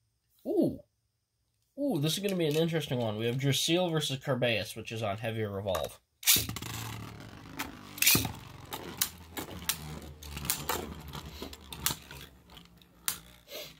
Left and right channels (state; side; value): identical; both; correlation 1.00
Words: Ooh. Ooh, this is going to be an interesting one. We have Drasil versus Carbeus, which is on Heavier Revolve.